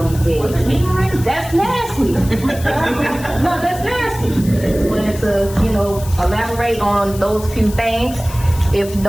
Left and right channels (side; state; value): left; noise; hiss, 15 dB below the sound